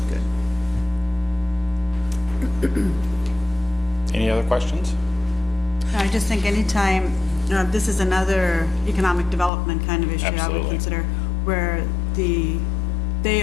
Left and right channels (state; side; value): drops out; right; at 9.5 s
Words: good. Any other questions? I just think anytime, this is another economic development kind of issue I would Absolutely. consider, where they